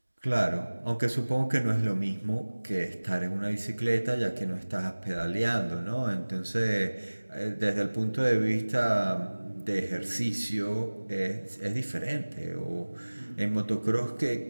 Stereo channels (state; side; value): inverted; both; correlation -1.00